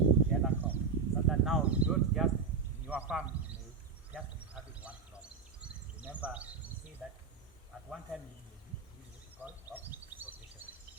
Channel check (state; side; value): quieter; left; 5.4 dB